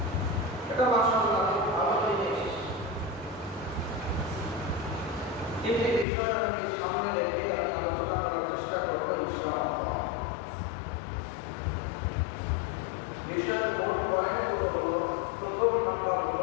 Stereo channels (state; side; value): drops out; right; at 6.1 s